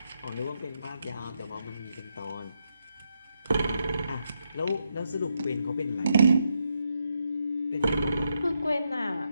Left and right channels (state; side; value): inverted; both; correlation -0.82